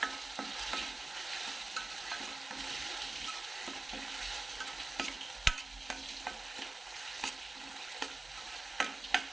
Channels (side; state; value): left; quieter; 3.1 dB